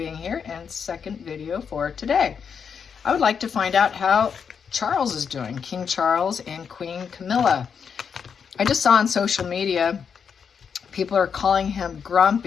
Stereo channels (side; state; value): right; quieter; 6.7 dB